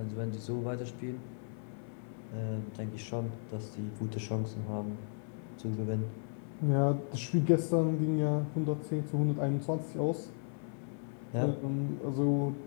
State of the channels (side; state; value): right; silent; 54 dB below the other